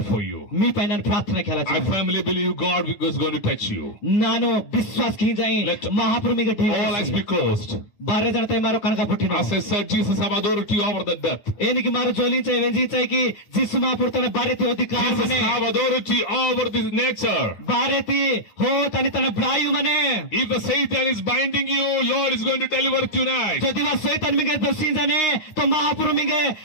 for you. మీ పైన ప్రార్థన Kela I firmly believe God is going to touch you. ನಾನು ವಿಶ್ವಾಸ ಕಿ ಜಾಯಿ Let ಮಹಾಪ್ರಭುಗೆ all eyes be closed. ಬಾರೆ ಜನತೆ ಮಾರೋ ಕನಕ ಪುಟ್ಟಿನ As I said, Jesus have authority over the death. ಏನಿಗೆ ಮಾರು ಜೋಲಿಂಚೆ ವೆಂಜಿಚೈ ಕಿ ಜಿಸು ಮಹಾಪ್ರಭು ತನ ಬಾರೆತಿ ಅಧಿಕಾರ Jesus ಮನೆ have authority over this nature. ಬಾರೆತಿ ಹೋ ತನಿ ತನ ಬ್ರಾಯು ಮನೆ If the Satan is binding you, Lord is going to deliver tonight. যদি वा शैतान मिगे दसिंजने तो महाप्रभु मिगे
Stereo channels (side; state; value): right; late; 9.4 ms